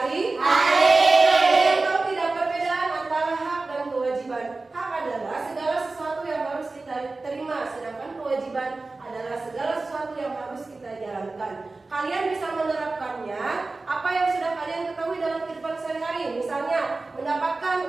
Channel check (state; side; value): quieter; left; 3.5 dB